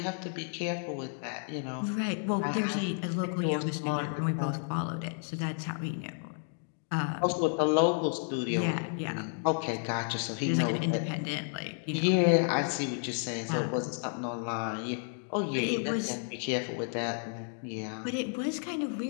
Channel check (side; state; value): right; silent; 57 dB below the other